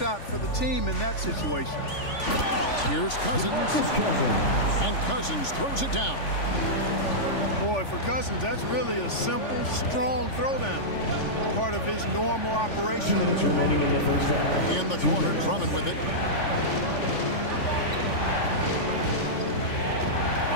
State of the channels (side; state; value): right; late; 3.5 ms